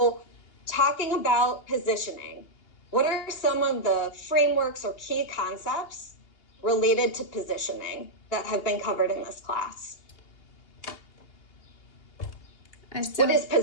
talking about positioning, what are some of the frameworks or key concepts related to positioning that have been covered in this class? What is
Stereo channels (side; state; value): right; late; 2.8 ms